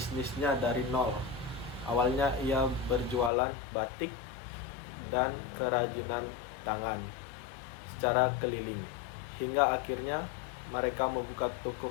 dari nol. Awalnya ia berjualan batik dan kerajinan tangan secara keliling, hingga akhirnya mereka membuka toko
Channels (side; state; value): right; drops out; at 3.3 s